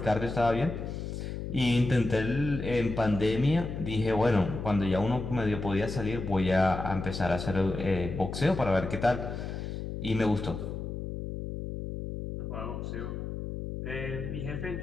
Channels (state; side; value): noise; left; hum, 6 dB below the sound